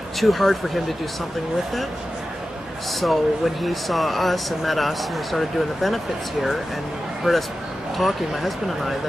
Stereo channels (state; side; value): normal; both; correlation 0.93